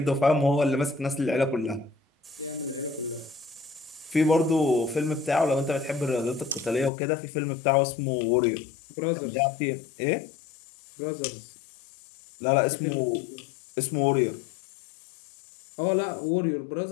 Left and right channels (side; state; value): right; drops out; at 6.9 s